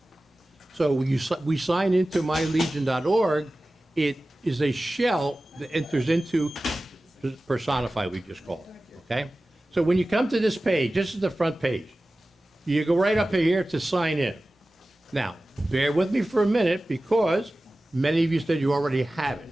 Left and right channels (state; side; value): normal; both; correlation 0.96